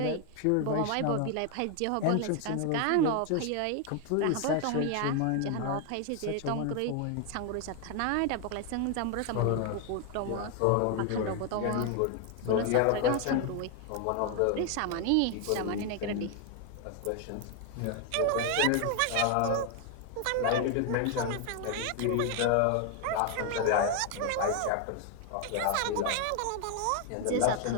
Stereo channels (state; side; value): different; both; correlation 0.00